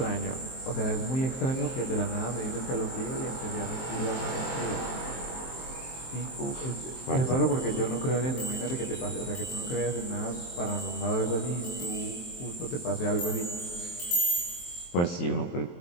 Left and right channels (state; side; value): late; right; 23 ms